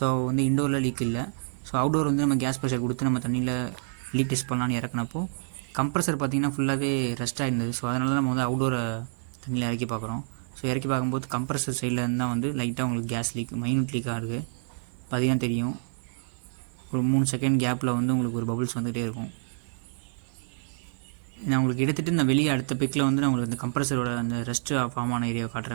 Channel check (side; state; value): left; silent; digital silence